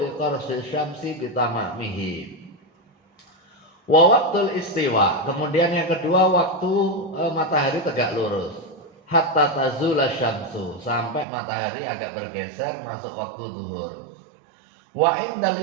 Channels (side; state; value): left; drops out; at 11.2 s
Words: qarsi syamsi bitamamihi. Wa waktul istiwa, kemudian yang kedua waktu matahari tegak lurus, hatta tazula syamsu, sampai matahari agak bergeser masuk waktu zuhur. Wa